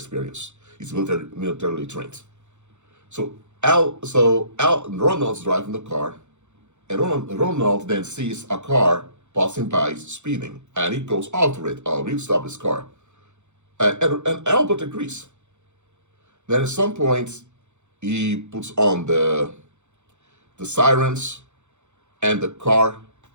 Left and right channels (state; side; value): late; left; 0.83 ms